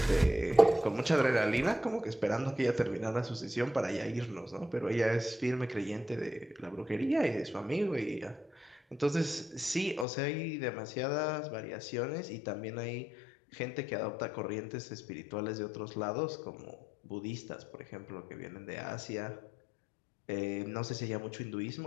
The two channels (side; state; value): right; drops out; at 10.1 s